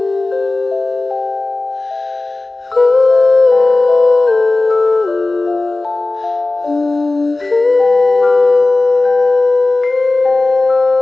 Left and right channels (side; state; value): right; quieter; 3.1 dB